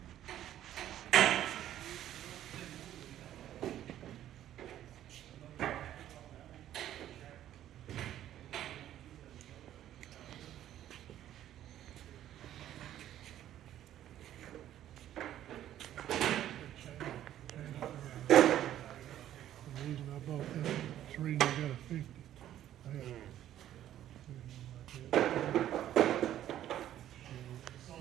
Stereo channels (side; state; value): left; quieter; 12.0 dB